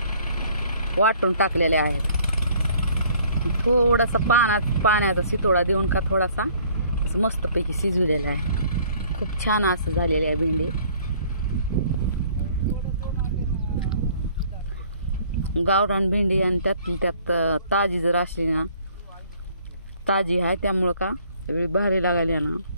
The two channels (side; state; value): both; inverted; correlation -0.57